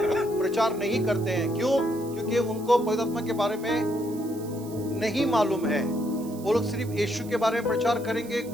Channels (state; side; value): noise; right; hiss, 19 dB below the sound